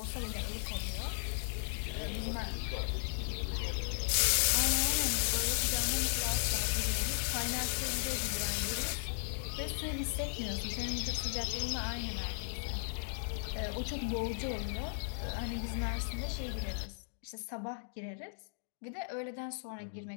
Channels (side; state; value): right; silent; digital silence